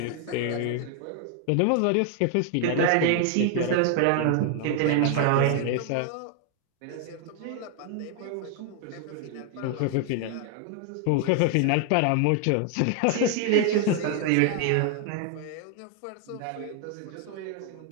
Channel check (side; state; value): both; different; correlation 0.00